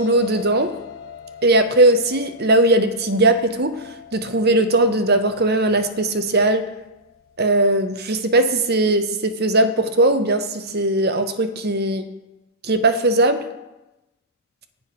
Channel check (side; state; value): both; normal; correlation -0.17